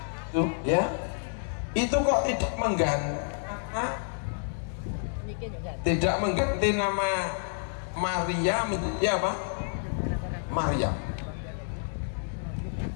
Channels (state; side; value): silent; right; digital silence